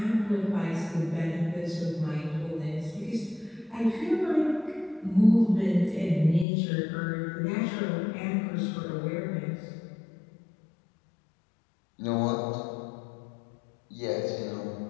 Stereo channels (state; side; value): drops out; right; at 6.5 s